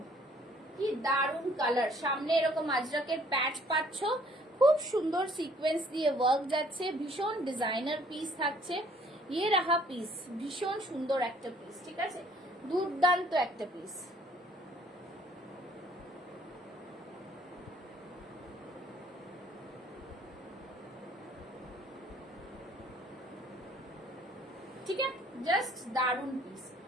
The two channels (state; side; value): normal; both; correlation 0.60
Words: কি দারুন কালার। সামনে এরকম আজরাকের প্যাচ পাচ্ছ, খুব সুন্দর সিকোয়েন্স দিয়ে ওয়ার্ক যাচ্ছে, ভীষণ ডিজাইনার পিস থাকছে। ইয়ে রাহা পিস, ভীষণ সুন্দর একটা পিস, ঠিক আছে, দুর্দান্ত একটা পিস। ঠিক আছে, জাস্ট দারুন পিস।